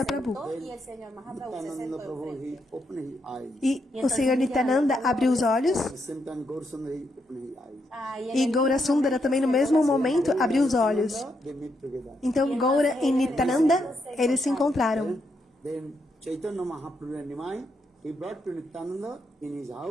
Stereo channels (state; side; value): normal; both; correlation 0.80